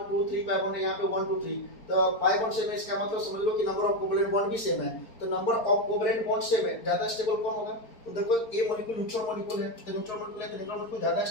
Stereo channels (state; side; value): late; right; 4.4 ms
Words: 2 3 पाई बॉन्ड है, यहाँ पे 1 2 3। तो पाई बॉन्ड सेम है, इसका मतलब समझ लो कि नंबर ऑफ कोवेलेंट बॉन्ड भी सेम है। तो number of covalent bond same है, ज्यादा स्टेबल कौन होगा, तो देखो ए मॉलिक्यूल न्यूट्रल मॉलिक्यूल है, तो न्यूट्रल मॉलिक्यूल है तो न्यूट्रल मॉलिक्यूल ज्यादा